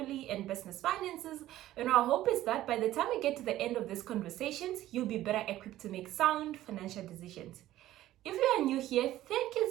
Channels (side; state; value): left; quieter; 14.3 dB